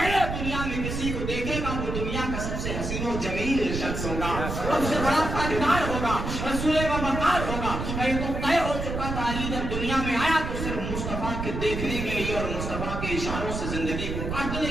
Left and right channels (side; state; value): right; noise; rumble, 4 dB below the sound